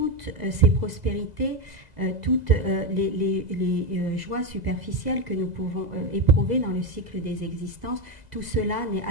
ces prospérités, toutes les joies superficielles que nous pouvons éprouver dans le cycle des existences, tout cela n'est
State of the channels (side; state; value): left; late; 2.0 ms